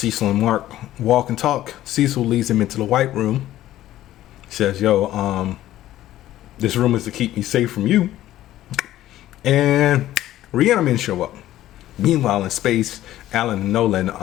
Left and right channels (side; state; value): right; quieter; 13.9 dB